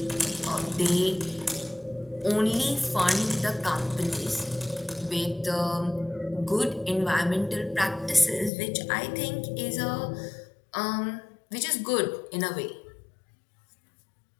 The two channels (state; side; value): drops out; right; at 8.5 s